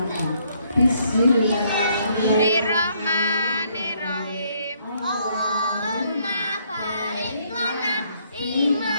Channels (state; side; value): inverted; both; correlation -0.69